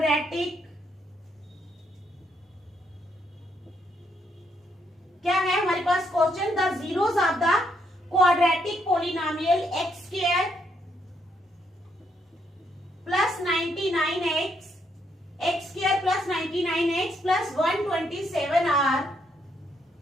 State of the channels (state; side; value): normal; both; correlation 0.75